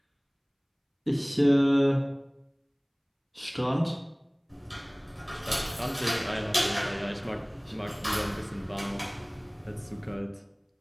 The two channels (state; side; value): identical; both; correlation 1.00